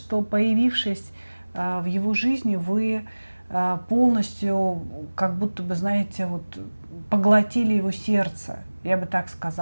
появившись в его жизни, вы полностью, как будто бы, знаете, вот, поглотили его сердце, я бы так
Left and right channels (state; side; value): inverted; both; correlation -1.00